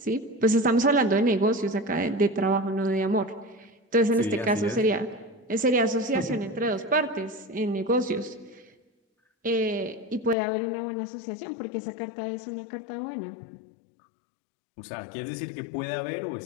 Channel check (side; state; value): right; drops out; at 10.4 s